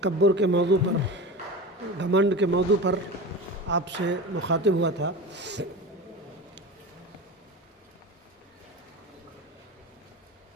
کے موضوع پر، گھمنڈ کے موضوع پر آپ سے مخاطب ہوا تھا۔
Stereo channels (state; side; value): normal; both; correlation 0.29